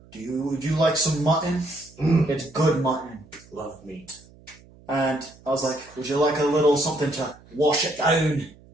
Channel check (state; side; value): noise; right; hum, 25 dB below the sound